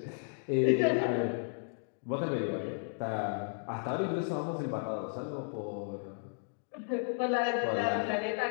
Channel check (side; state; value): right; silent; digital silence